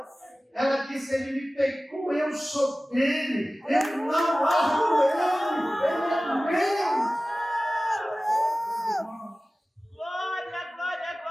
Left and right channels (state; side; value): normal; both; correlation 0.97